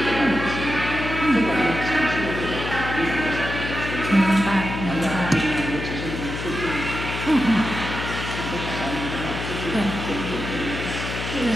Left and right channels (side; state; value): left; noise; hum, 6 dB below the sound